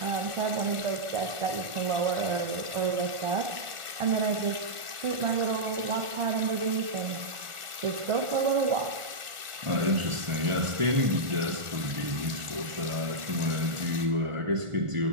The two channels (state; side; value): late; left; 1.4 ms